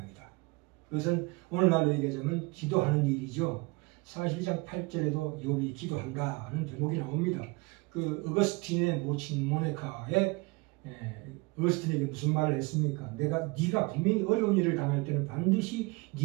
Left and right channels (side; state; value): left; quieter; 26.0 dB